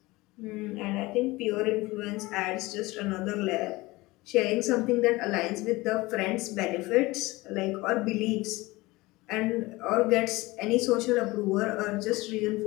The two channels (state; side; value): quieter; right; 21.1 dB